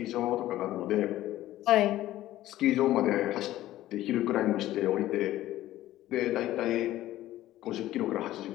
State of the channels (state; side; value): quieter; right; 14.7 dB